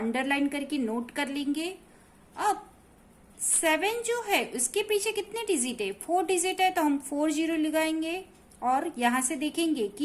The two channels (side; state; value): both; identical; correlation 1.00